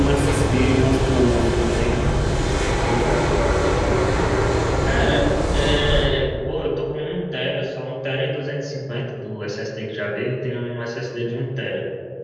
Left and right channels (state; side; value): identical; both; correlation 1.00